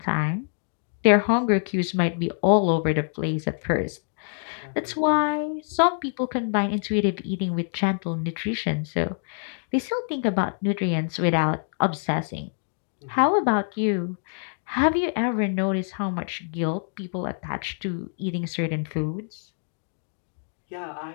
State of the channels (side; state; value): right; silent; digital silence